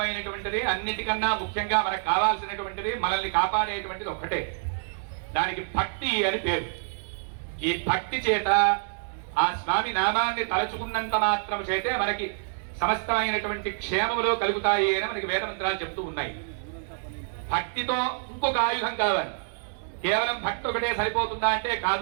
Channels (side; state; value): left; silent; digital silence